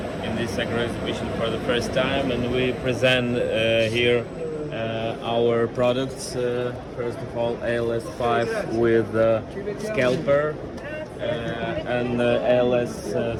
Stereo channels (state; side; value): identical; both; correlation 1.00